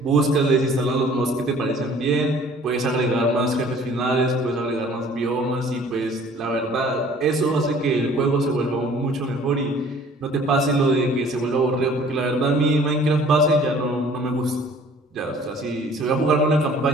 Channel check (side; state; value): both; normal; correlation 0.53